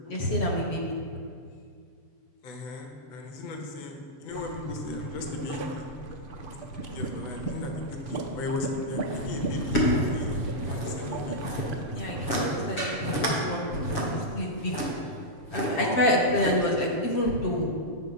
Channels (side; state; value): right; late; 7.2 ms